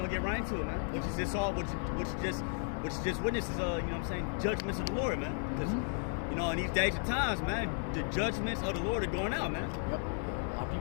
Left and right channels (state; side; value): silent; right; 55 dB below the other